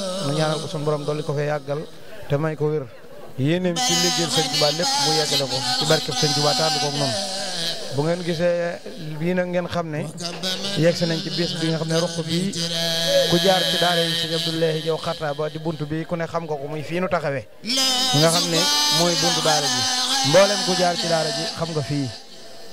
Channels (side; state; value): both; identical; correlation 1.00